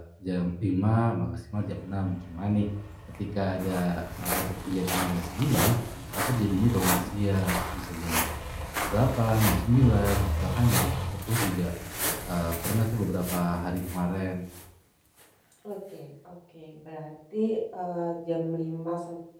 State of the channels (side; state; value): both; identical; correlation 1.00